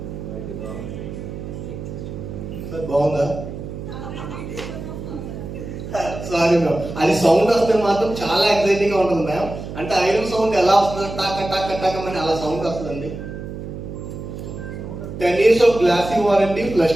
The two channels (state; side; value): noise; right; hum, 9 dB below the sound